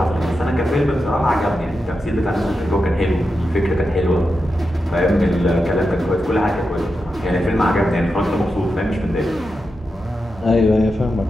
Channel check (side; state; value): both; normal; correlation 0.89